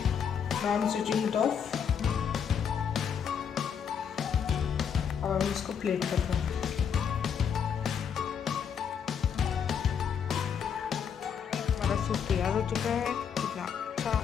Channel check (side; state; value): right; quieter; 7.5 dB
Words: Now I am switching it of और इसको प्लेट करते हैं। हमारा सूप तैयार हो चुका है, कितना अच्छा